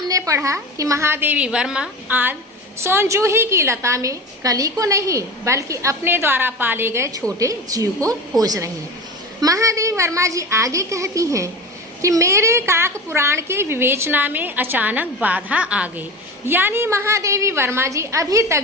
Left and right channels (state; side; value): normal; both; correlation 0.29